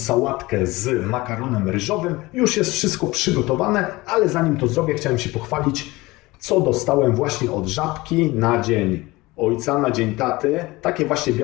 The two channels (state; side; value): quieter; right; 21.1 dB